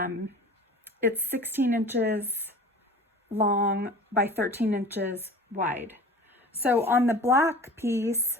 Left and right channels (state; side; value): normal; both; correlation 0.40